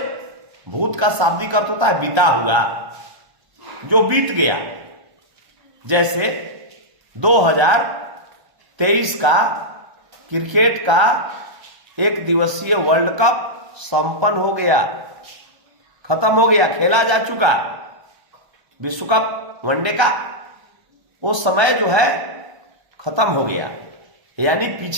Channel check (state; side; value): late; left; 1.3 ms